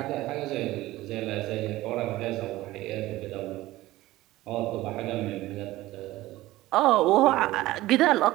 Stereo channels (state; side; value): quieter; left; 17.2 dB